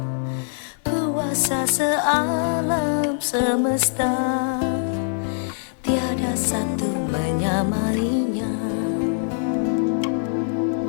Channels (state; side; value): silent; right; 60 dB below the other